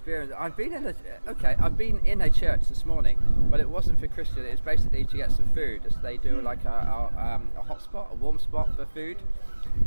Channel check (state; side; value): inverted; both; correlation -1.00